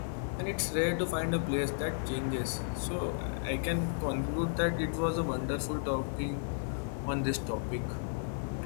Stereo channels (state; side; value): silent; right; digital silence